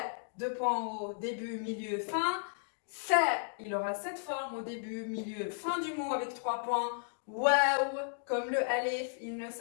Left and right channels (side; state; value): right; silent; digital silence